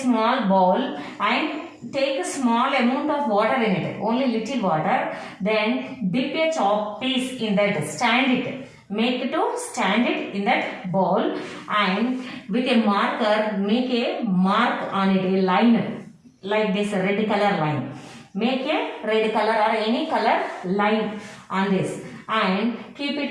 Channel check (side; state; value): both; identical; correlation 1.00